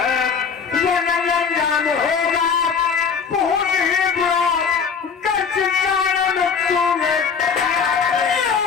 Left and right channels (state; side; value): quieter; right; 6.1 dB